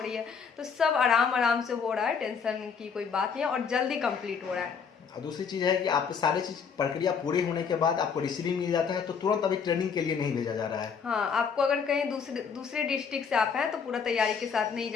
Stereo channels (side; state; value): right; quieter; 6.2 dB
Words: रही है, तो सब आराम आराम से हो रहा है, टेंशन की कोई बात नहीं है और जल्दी कंप्लीट हो रहा है। और दूसरी चीज़ है कि आपके सारी चीज़ प्रक्रिया पूरी होने के बाद आपको रिसीविंग मिल जाता है, तो तुरंत अभी ट्रेनिंग के लिए नहीं भेजा जा रहा है। हाँ, आपको अगर कहीं दूसरे डिस्ट्रिक्ट से आप हैं तो पूरा तैयारी के साथ नहीं